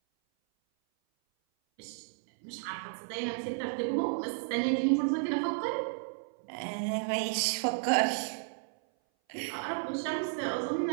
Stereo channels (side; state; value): left; silent; 56 dB below the other